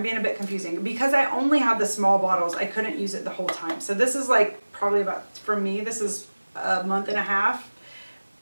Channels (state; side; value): inverted; both; correlation -1.00